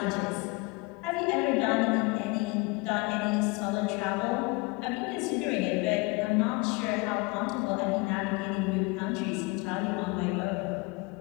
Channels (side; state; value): right; quieter; 26.8 dB